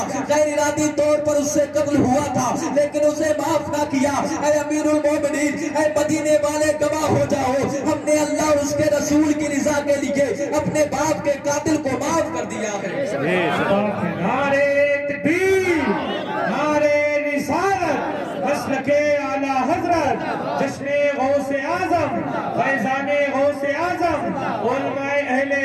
غیر ارادی طور پر اس سے قتل ہوا تھا لیکن اسے معاف نہ کیا۔ اے امیر المومنین، اے مدینے والے گواہ ہو جاؤ، ہم نے اللہ اور اس کے رسول کی رضا کے لیے اپنے باپ کے قاتل کو معاف کر دیا ہے۔ نعرہ تکبیر، نعرہ رسالت، مسلک اعلی حضرت، جشن غوث اعظم، فیضان غوث اعظم، علماء اہل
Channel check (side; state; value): both; identical; correlation 1.00